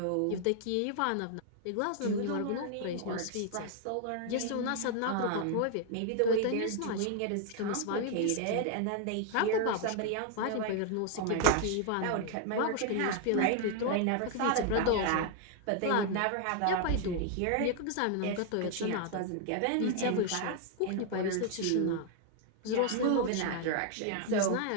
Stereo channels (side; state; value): both; different; correlation 0.00